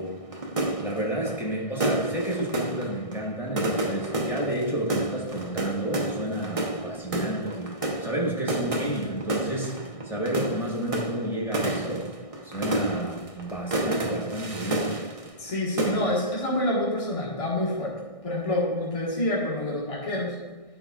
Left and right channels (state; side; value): late; right; 1.6 ms